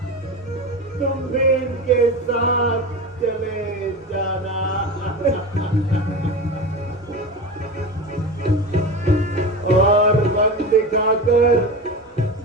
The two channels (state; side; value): normal; both; correlation 0.27